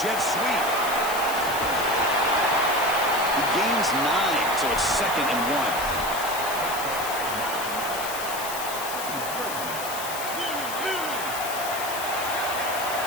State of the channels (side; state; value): left; noise; hiss, 8 dB below the sound